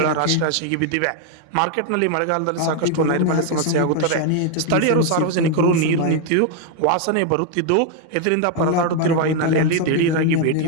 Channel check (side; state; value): both; different; correlation 0.01